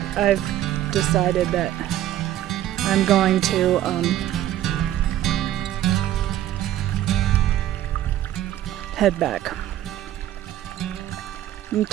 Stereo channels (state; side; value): quieter; left; 12.8 dB